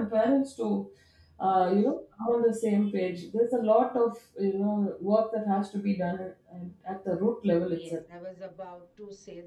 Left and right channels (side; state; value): both; identical; correlation 1.00